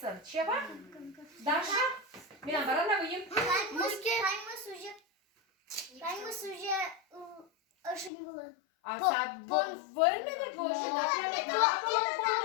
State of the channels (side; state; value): right; drops out; at 8.1 s